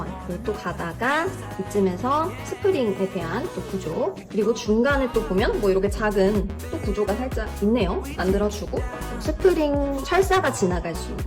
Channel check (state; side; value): identical; both; correlation 1.00